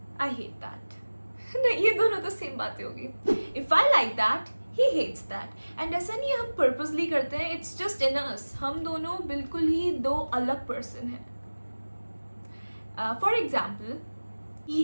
I hate that. नहीं, ये दोनों तो सेम बातें होगी। If I like that, he hates that. And ऐसा नहीं है हम पर्पसली करते हैं, इट्स जस्ट इन अस। हम दोनों बिल्कुल ही 2 अलग पर्सन हैं। For example, he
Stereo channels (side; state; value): both; inverted; correlation -1.00